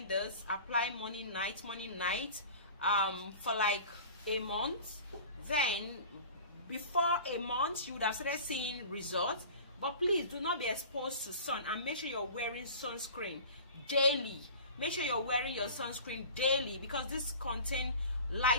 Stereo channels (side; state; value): both; inverted; correlation -0.40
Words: this, apply morning night for like a month. Then before a month you would have started seeing results. But please do not be exposed to sun, and make sure you're wearing sunscreen daily. Make sure you're wearing your sunscreen daily, because this contains